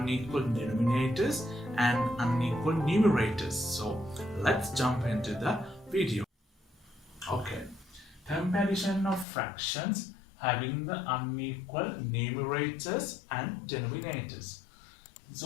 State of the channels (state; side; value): drops out; right; at 9.2 s